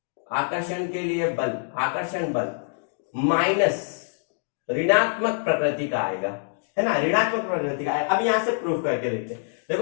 आकर्षण बल माइनस ऋणात्मक प्रकृति का आएगा, है ना, ऋणात्मक प्रकृति का आएगा। अब यहां से प्रूफ करके देखते हैं।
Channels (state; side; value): silent; right; digital silence